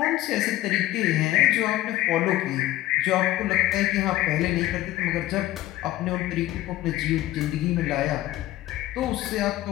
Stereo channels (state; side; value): quieter; right; 15.5 dB